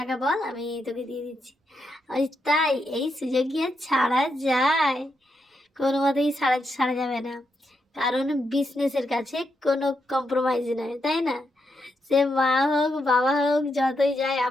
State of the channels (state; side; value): normal; both; correlation 0.82